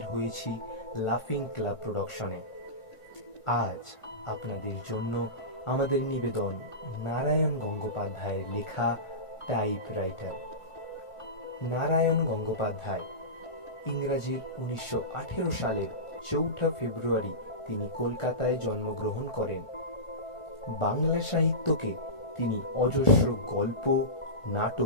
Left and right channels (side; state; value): right; late; 1.4 ms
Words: হয়েছি লাফিং ক্লাব প্রোডাকশনে। আজ আপনাদের জন্য আমাদের নিবেদন নারায়ণ গঙ্গোপাধ্যায়ের লেখা টাইপরাইটার। নারায়ণ গঙ্গোপাধ্যায় ইংরাজির 1918 সালের 4 ফেব্রুয়ারি তিনি কলকাতায় জন্মগ্রহণ করেন। বাংলা সাহিত্যকে তিনি অজস্র গল্প,